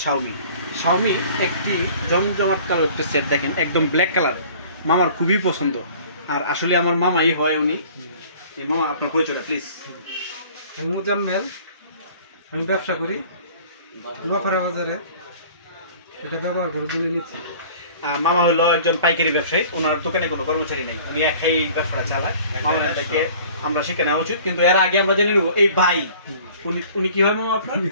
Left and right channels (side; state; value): both; inverted; correlation -0.49